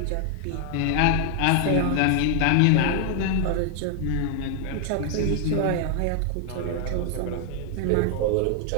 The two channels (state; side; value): different; both; correlation 0.00